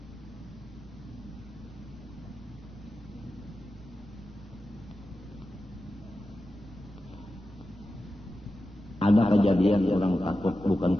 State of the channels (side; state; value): both; normal; correlation 0.92